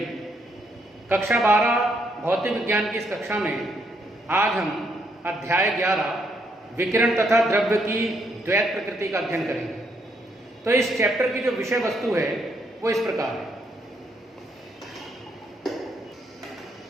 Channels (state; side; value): normal; both; correlation 0.74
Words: कक्षा 12 भौतिक विज्ञान की इस कक्षा में आज हम अध्याय 11 विकिरण तथा द्रव्य की द्वैत प्रकृति का अध्ययन करेंगे। तो इस चैप्टर की जो विषय वस्तु है वो इस प्रकार है।